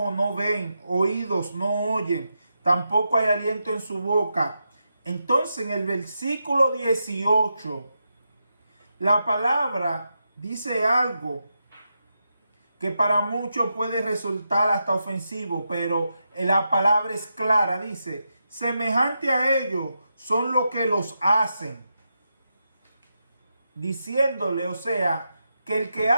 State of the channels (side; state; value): both; inverted; correlation -0.86